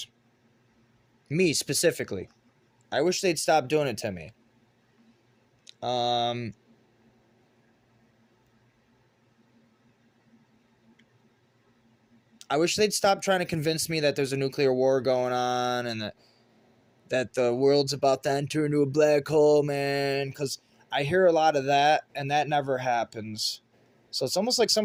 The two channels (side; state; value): both; identical; correlation 1.00